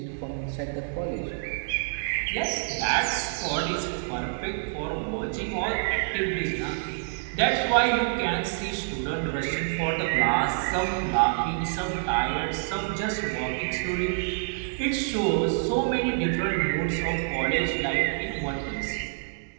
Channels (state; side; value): silent; left; digital silence